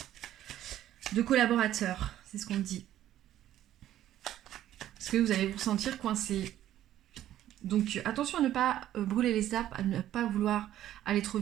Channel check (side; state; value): left; quieter; 12.5 dB